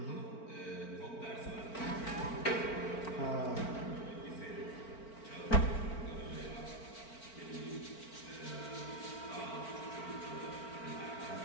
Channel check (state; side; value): late; right; 4.4 ms